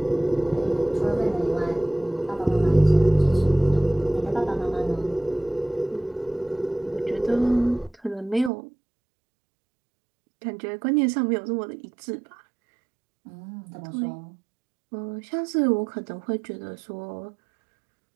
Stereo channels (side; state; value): left; drops out; at 8.5 s